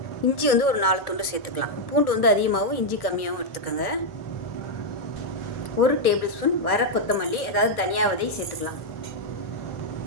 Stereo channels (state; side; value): late; right; 1.2 ms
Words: இஞ்சி வந்து ஒரு 4 துண்டு சேர்த்துக்கலாம். பூண்டு வந்து அதிகமாகவும் இஞ்சி கம்மியாகவும் எடுத்துக்கோங்க. 1 டேபிள் ஸ்பூன் வர கொத்தமல்லி அதாவது தனியா விதை சேர்த்துக்கலாம்.